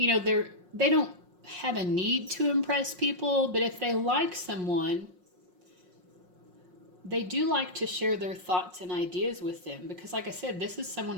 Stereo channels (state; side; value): late; left; 5.5 ms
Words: know, they don't have a need to impress people, but if they like someone, they do like to share their thoughts and ideas with them because, like I said, this is